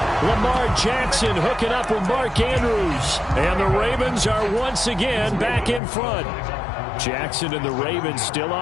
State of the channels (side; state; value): right; drops out; at 5.8 s